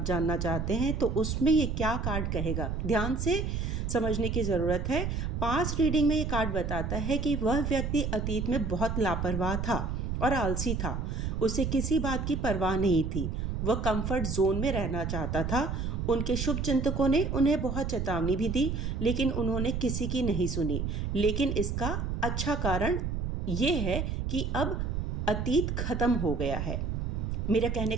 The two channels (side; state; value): right; noise; rumble, 2 dB below the sound